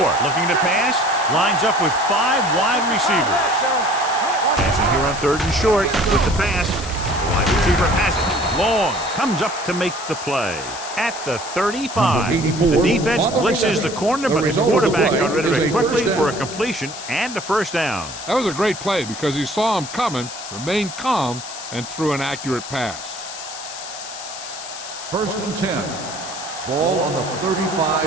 looking to pass. Lines up with 5 wide receivers. Passing here on third and short with the pass. The wide receiver has it. Long comes up to make the play at the 35. The defense blitzes the corner, but the quarterback got rid of it quickly for a completion and a first down. That was a great play because he saw him coming, remained calm, and threw an accurate pass. First and 10. Ball on the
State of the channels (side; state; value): left; noise; hiss, 11 dB below the sound